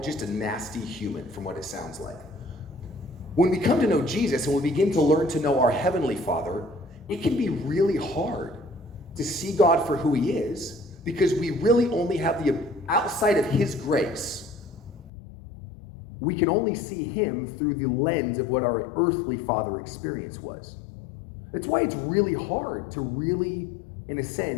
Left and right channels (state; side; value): drops out; right; at 15.1 s